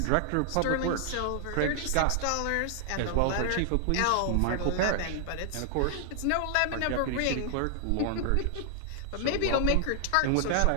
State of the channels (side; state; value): both; different; correlation 0.00